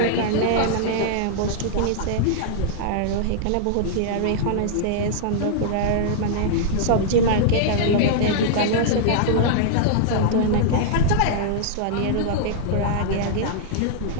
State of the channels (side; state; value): both; different; correlation -0.01